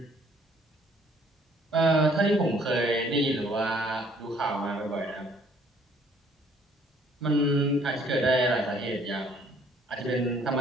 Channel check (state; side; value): normal; both; correlation 0.61